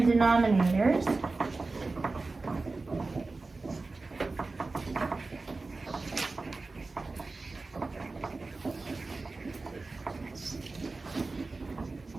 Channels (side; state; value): left; quieter; 3.6 dB